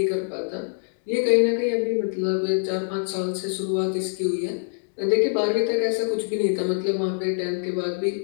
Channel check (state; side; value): silent; right; digital silence